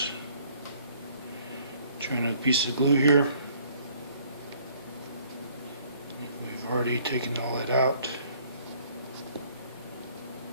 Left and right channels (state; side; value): inverted; both; correlation -0.60